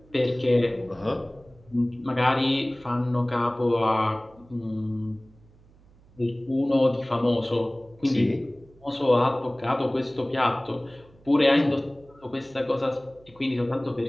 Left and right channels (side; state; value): right; noise; hum, 27 dB below the sound